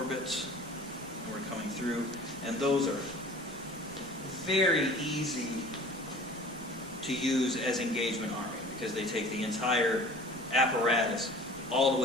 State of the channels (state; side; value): noise; right; rumble, 23 dB below the sound